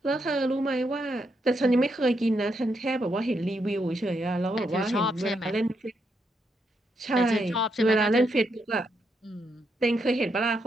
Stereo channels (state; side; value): normal; both; correlation 0.80